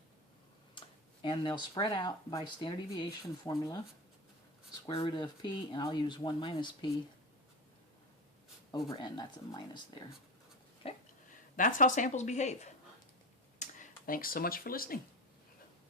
and they'll spread out by standard deviation formula, square root of P, and I'll use 1 minus P over N. That's a minus there. Okay? That's how samples behave. Thanks so much for listening.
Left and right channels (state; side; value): normal; both; correlation 0.23